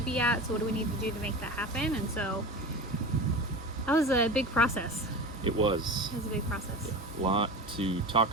be at? So what do we need to do to make that happen? And so that was a big process. It was. It was a big process. A lot to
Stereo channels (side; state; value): both; normal; correlation 0.30